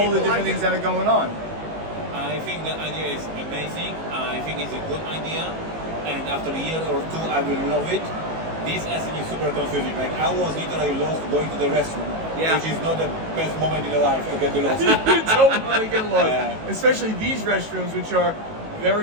the different things that are going on. I think the idea is amazing. I think it's a good idea. And after a year or 2, I will love it. This Essen is super confusing. I was literally lost going to the restroom, which is not the best moment in your life to get lost. You don't want to get lost. Especially these restrooms, which are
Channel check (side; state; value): left; late; 18 ms